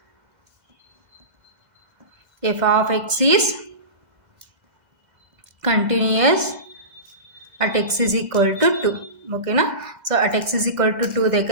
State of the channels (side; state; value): left; late; 2.0 ms